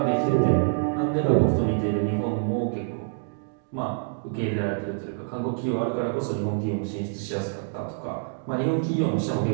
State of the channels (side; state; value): left; silent; digital silence